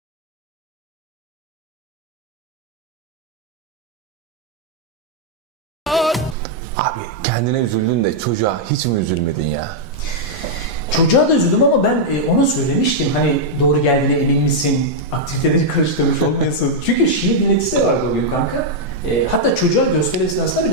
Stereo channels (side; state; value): both; normal; correlation -0.04